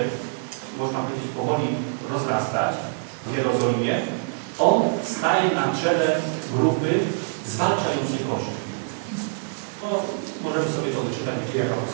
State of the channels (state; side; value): silent; left; digital silence